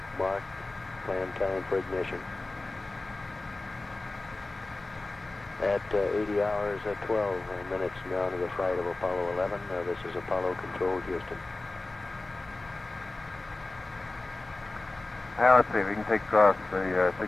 Mark planned time for ignition. At 80 hours, 12 minutes now to the flight of Apollo 11. This is Apollo Control, Houston. Now let's see if we can take across the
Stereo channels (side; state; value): right; quieter; 3.1 dB